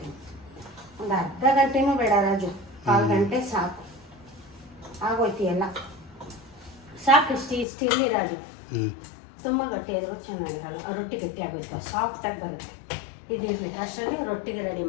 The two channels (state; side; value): drops out; right; at 7.7 s